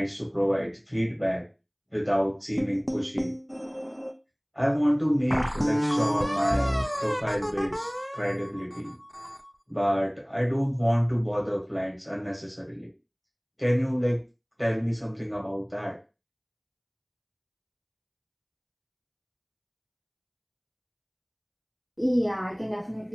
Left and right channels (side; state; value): both; identical; correlation 1.00